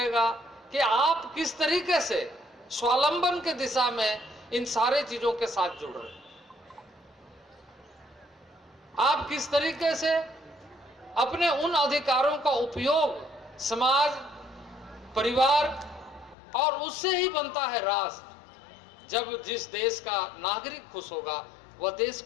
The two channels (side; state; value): right; drops out; at 16.4 s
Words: कि आप किस तरीके से स्वावलंबन के दिशा में इन सारे चीजों के साथ जुड़ रहे हैं, आप किस तरीके से अपने उन अधिकारों का उपयोग समाज, परिवार और उससे ही बनता है राष्ट्र। जब जिस देश का नागरिक खुश होगा वह देश